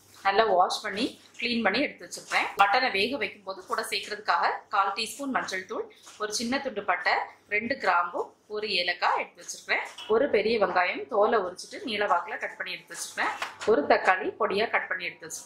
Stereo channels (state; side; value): identical; both; correlation 1.00